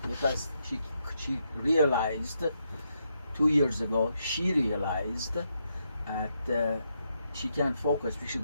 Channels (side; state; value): both; inverted; correlation -0.80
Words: because she realized 2 years ago, she realized that she can't focus because she